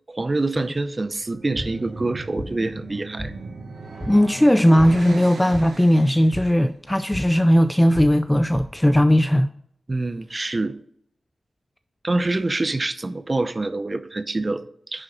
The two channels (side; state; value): both; normal; correlation 0.98